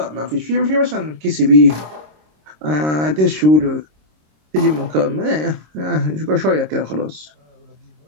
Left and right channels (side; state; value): left; late; 26 ms